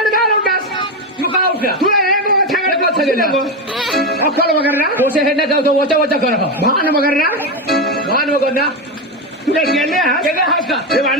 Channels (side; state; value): both; normal; correlation 0.12